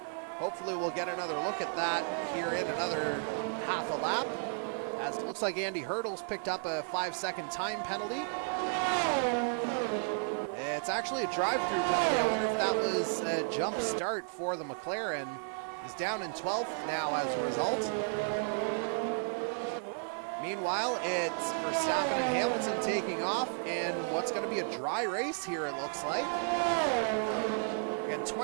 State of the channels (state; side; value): silent; left; 56 dB below the other